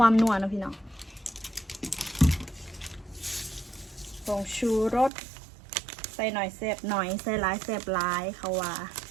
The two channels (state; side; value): drops out; left; at 5.1 s